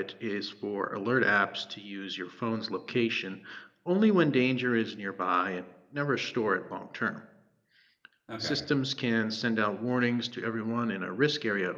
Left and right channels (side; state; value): both; identical; correlation 1.00